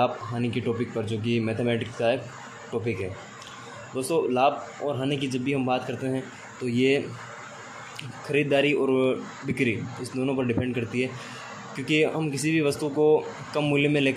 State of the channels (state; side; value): identical; both; correlation 1.00